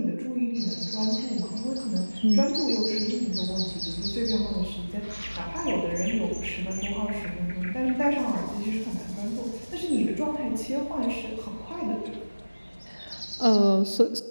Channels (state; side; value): inverted; both; correlation -1.00